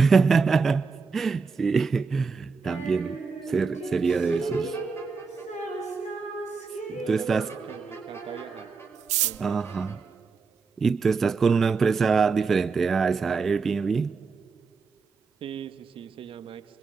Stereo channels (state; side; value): quieter; left; 4.8 dB